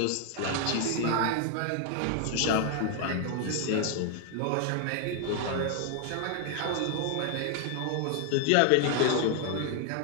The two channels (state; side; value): different; both; correlation 0.00